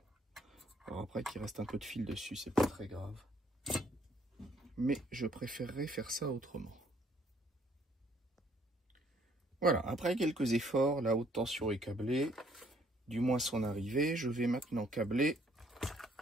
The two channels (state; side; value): normal; both; correlation 0.65